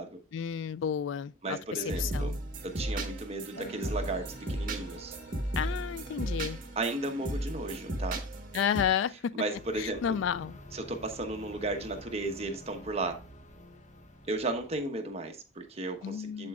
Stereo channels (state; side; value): normal; both; correlation 0.29